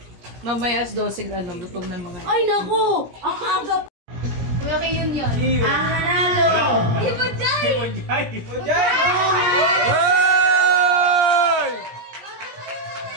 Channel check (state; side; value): late; left; 17 ms